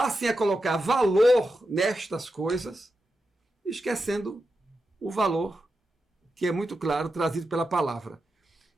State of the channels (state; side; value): normal; both; correlation 0.89